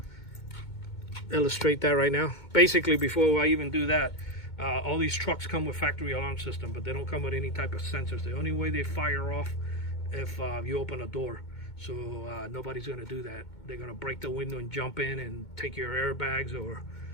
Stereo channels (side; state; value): right; late; 2.2 ms